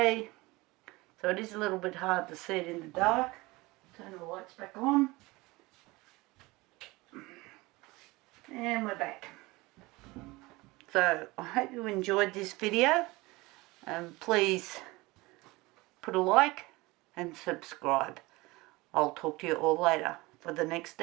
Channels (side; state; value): left; quieter; 22.0 dB